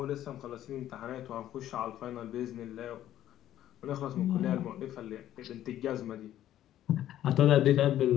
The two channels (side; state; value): right; quieter; 12.4 dB